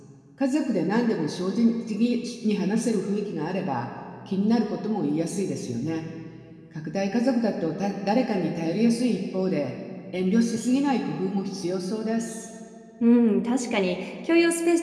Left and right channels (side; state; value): both; identical; correlation 1.00